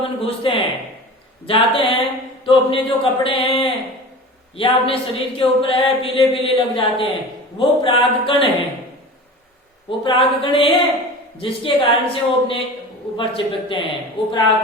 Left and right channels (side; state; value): both; normal; correlation 0.35